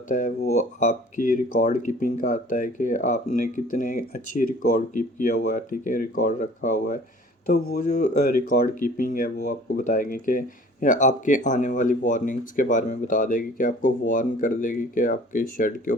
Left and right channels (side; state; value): both; normal; correlation 0.50